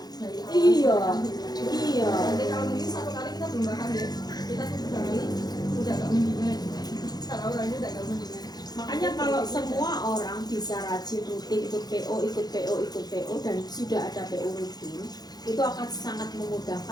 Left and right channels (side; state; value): right; late; 0.19 ms